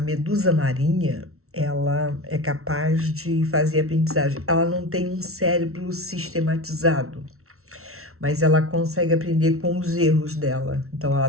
medusa marinha, ela é capaz de fazer aprendizagem. Ela não tem um cérebro sistematizado, mas ela consegue aprender com os erros dela. Então ela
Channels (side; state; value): left; late; 0.63 ms